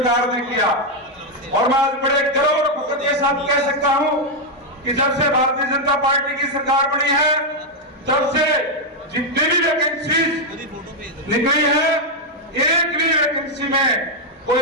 ने किया। और मैं आज बड़े गर्व और फख्र के साथ कह सकता हूं कि जब से भारतीय जनता पार्टी की सरकार बनी है, तब से जितनी भी वैकेंसीज निकली है, एक भी वैकेंसी में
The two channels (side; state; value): both; normal; correlation 0.00